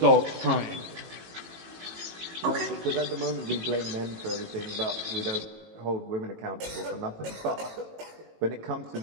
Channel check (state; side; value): late; left; 18 ms